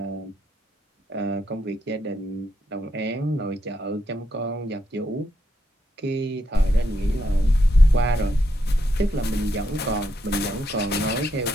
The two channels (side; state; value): both; normal; correlation 0.79